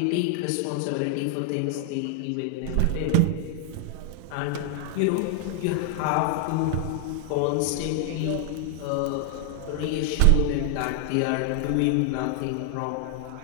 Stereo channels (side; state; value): both; different; correlation 0.00